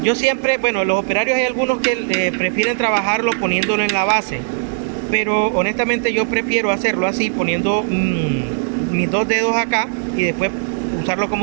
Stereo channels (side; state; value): left; silent; 57 dB below the other